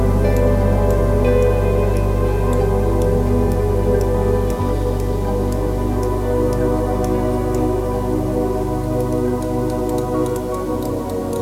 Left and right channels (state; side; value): identical; both; correlation 1.00